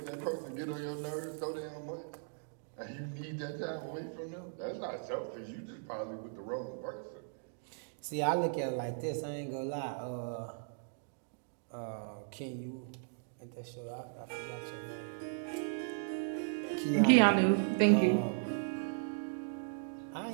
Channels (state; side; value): silent; left; digital silence